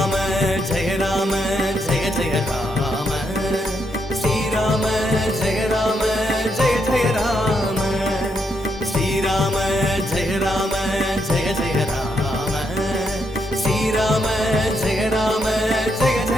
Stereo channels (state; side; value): normal; both; correlation 0.79